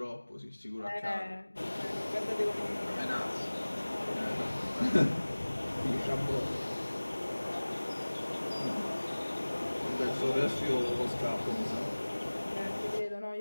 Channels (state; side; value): inverted; both; correlation -1.00